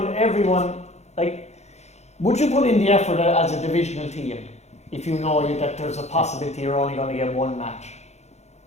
like, would you put in the effort as a divisional team if you know that there's a possibility you're only going to get one match?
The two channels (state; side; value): late; right; 0.32 ms